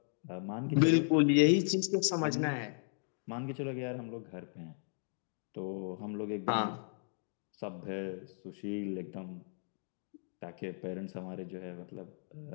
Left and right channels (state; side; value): silent; right; digital silence